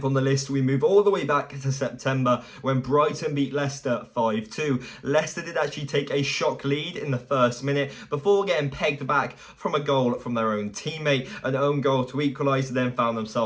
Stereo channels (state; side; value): identical; both; correlation 1.00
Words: on the list, we move all the way back to September when Brighton beat Leicester 5-2. Leicester did actually take a shock lead in the first minute before getting pegged back from a goal from their own teammate. An own goal to equalise, then found